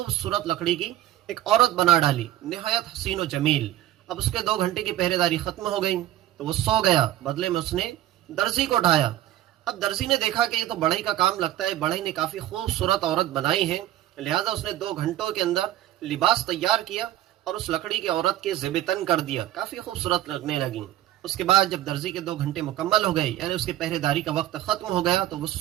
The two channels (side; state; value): left; quieter; 13.6 dB